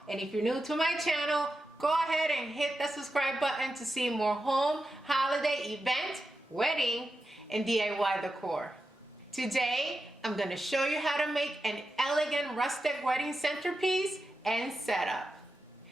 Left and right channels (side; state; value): both; normal; correlation 0.90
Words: and if you're new to my channel, go ahead and hit the subscribe button to see more home, holiday, event, wedding, and DIY decor. Today, I'm going to show you how to make an elegant rustic wedding centerpiece and setup.